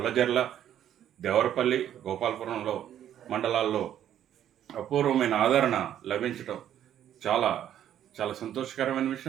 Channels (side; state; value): left; quieter; 10.7 dB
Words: దేవరపల్లి, గోపాలపురంలో మండలాల్లో అపూర్వమైన ఆదరణ లభించటం చాలా చాలా సంతోషకరమైన